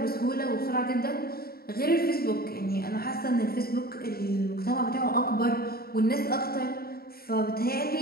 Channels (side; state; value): right; late; 0.44 ms